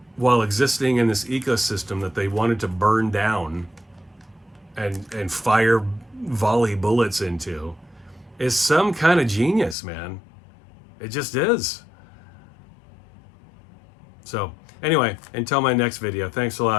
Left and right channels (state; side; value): drops out; right; at 9.8 s